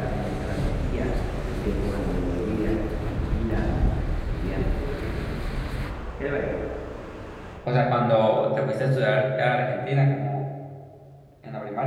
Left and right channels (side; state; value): both; identical; correlation 1.00